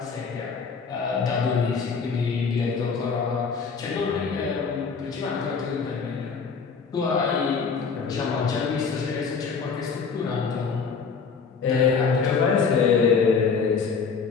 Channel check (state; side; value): quieter; right; 5.5 dB